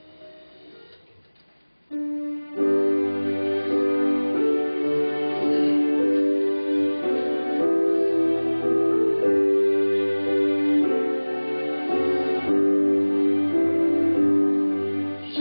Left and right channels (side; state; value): both; inverted; correlation -1.00